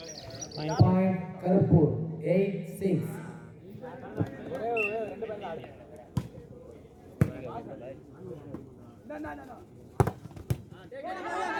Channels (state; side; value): identical; both; correlation 1.00